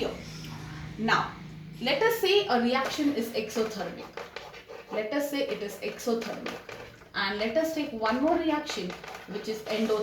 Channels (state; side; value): identical; both; correlation 1.00